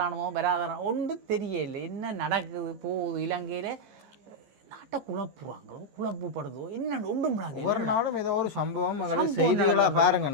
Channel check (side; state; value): left; late; 14 ms